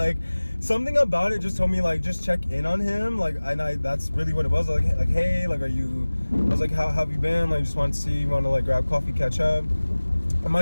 something about it just told me like just check in on him. Like, and that's really what it was. Like hey, like, are you? I was like, how have you been? Like, just wanted to see, you want to like grab coffee, catch up. And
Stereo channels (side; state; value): both; inverted; correlation -1.00